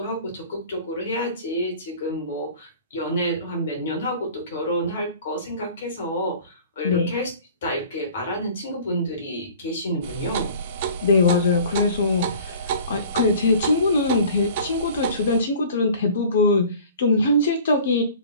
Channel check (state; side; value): inverted; both; correlation -0.46